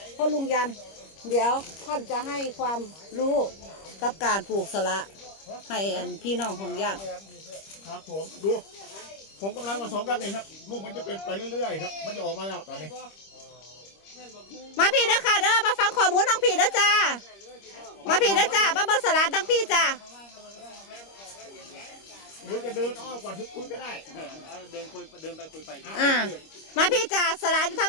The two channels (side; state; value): right; late; 25 ms